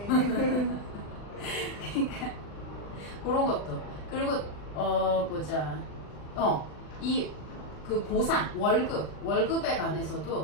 그러니까 그런 것도. 그리고 보자. 그 보상, 월급에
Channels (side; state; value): right; late; 40 ms